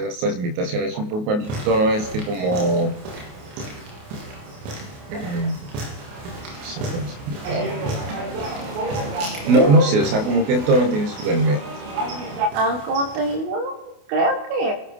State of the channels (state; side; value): late; left; 28 ms